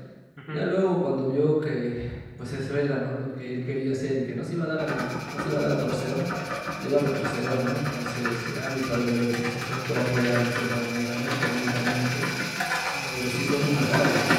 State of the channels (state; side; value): identical; both; correlation 1.00